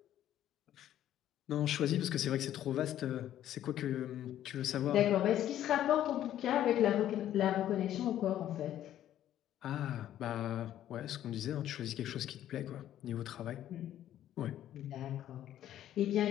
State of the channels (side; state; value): right; quieter; 11.9 dB